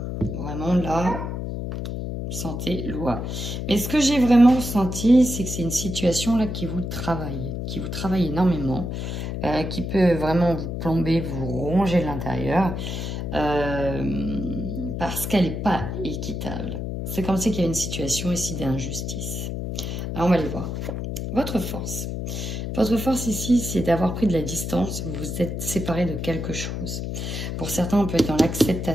Vraiment là, santé, loi. Mais ce que j'ai vraiment ressenti, c'est que c'est une situation là qui vous travaille énormément. Qui peut vraiment vous plomber, vous ronger l'intérieur. Parce qu'elle n'est pas équitable. C'est comme si il y a une situation ici d'injustice. Alors, on va aller voir. Votre force. Votre force ici, c'est d'avoir pris de la distance. Vous vous êtes séparé de quelque chose. Pour certains, on peut être dans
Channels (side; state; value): left; noise; hum, 4 dB below the sound